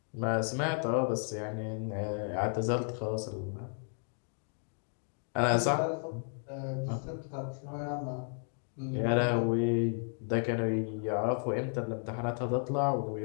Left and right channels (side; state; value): right; silent; 55 dB below the other